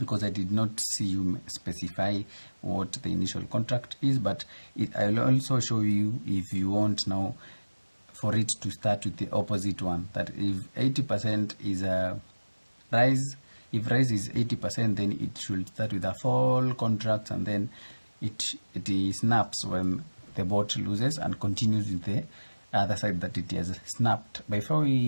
I did not see you specify what the initial contract is, but I'll also show you if you want now for it to start with the opposite one, that if 80% is a rise, if rise is 80%, then it should start with a fall contract, and then it snaps when the bot loses and continues with the other side that it has snapped. Before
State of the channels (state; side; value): inverted; both; correlation -1.00